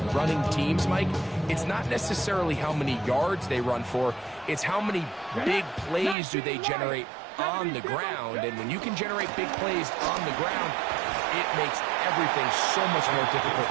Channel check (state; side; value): drops out; left; at 6.2 s